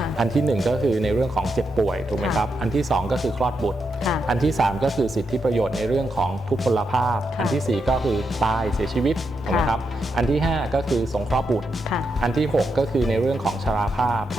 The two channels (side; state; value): both; normal; correlation 0.84